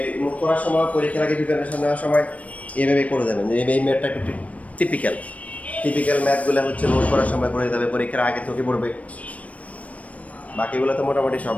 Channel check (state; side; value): late; right; 0.067 ms